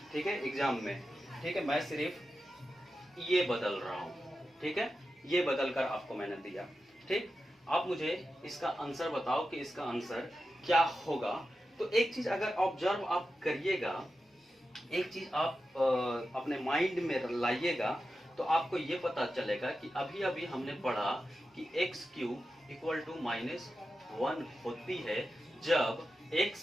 ठीक है, एग्जाम में। ठीक है, मैं सिर्फ ये बदल रहा हूँ। ठीक है, ये बदल कर आपको मैंने दिया। ठीक, आप मुझे इसका आंसर बताओ कि इसका आंसर क्या होगा। तो एक चीज अगर ऑब्जर्व आप करिएगा, एक चीज आप अपने माइंड में लाइएगा, तो आपको ये पता चलेगा कि अभी अभी हमने पढ़ा कि एक्स क्यूब इक्वल टू -1 होती है जब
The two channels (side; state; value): both; normal; correlation 0.91